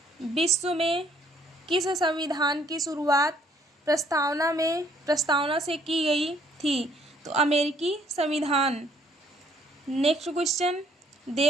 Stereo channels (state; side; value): normal; both; correlation 0.64